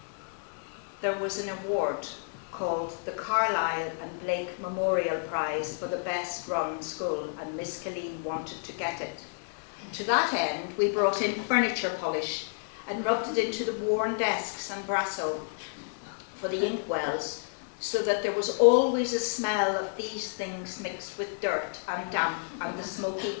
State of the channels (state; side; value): silent; right; 58 dB below the other